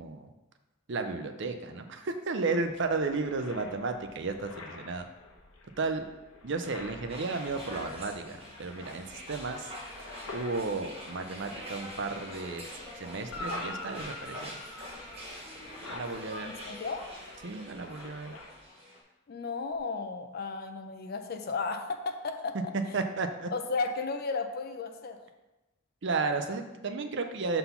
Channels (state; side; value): normal; both; correlation -0.13